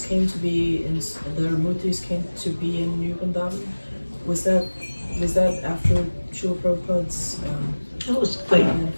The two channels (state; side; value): inverted; both; correlation -1.00